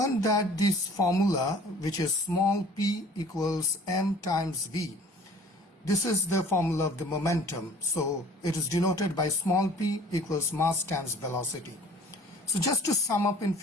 that this formula, which is small p equals m times v, this is the formula of the momentum. So it is denoted by small p equals mass times velocity. So just to sum up in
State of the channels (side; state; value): both; normal; correlation 0.49